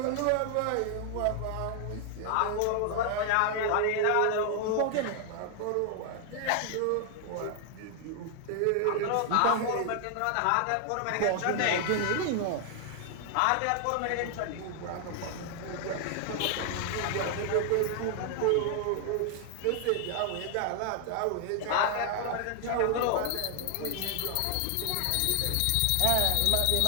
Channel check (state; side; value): different; both; correlation 0.00